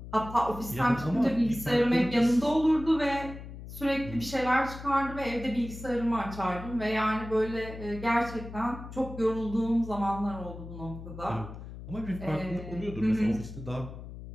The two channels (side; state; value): left; noise; hum, 12 dB below the sound